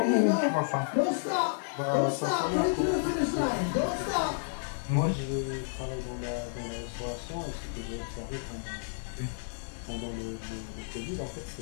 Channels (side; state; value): right; silent; digital silence